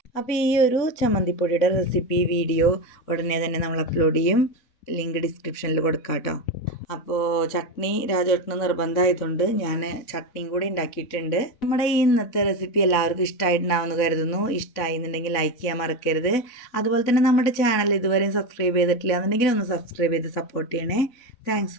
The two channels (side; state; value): right; late; 4.0 ms